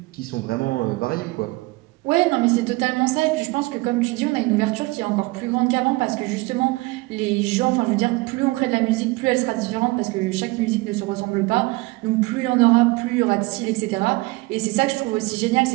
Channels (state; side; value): quieter; left; 23.2 dB